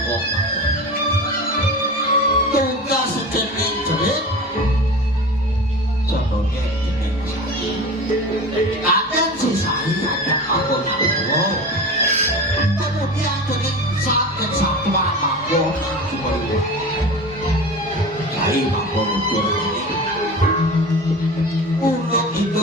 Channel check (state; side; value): normal; both; correlation 0.32